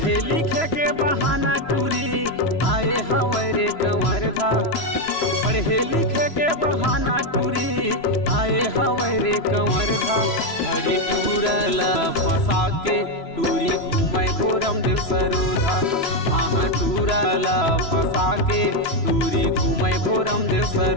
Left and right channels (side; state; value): right; late; 3.0 ms